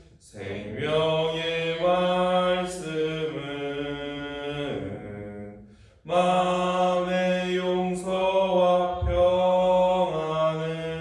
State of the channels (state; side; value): identical; both; correlation 1.00